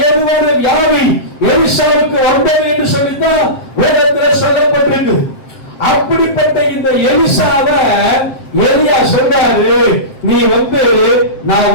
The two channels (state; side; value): late; right; 7.6 ms